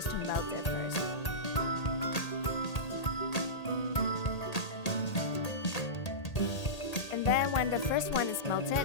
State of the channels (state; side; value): late; right; 1.8 ms